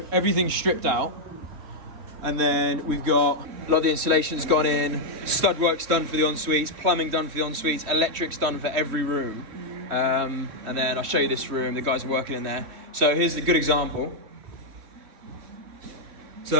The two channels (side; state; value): left; late; 3.1 ms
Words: everything's stripped out. And then we've got a lot of the insulation's gone in, stud work's done for the en-suites, plumbing done for the en-suites, electric's done for every room. And then I'll show you this room, the guys are working in there. So here's a good example.